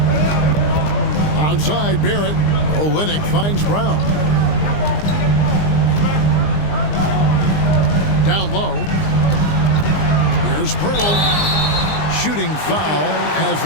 Outside Barrett. Olynyk finds Brown. Down low. Here's Pirtle. Shooting foul as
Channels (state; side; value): late; right; 20 ms